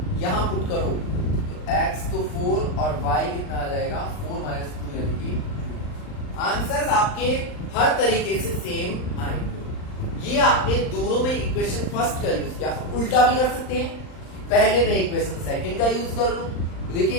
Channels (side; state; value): right; late; 39 ms